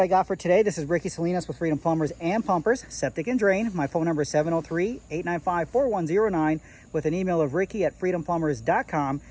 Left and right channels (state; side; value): identical; both; correlation 1.00